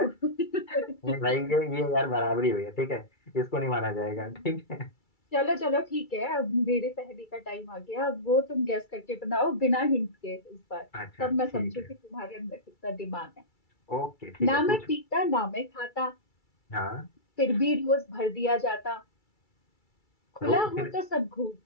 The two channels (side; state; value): right; late; 2.3 ms